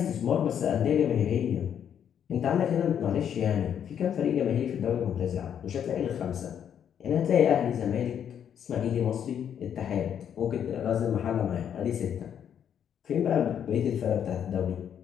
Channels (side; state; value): right; quieter; 8.9 dB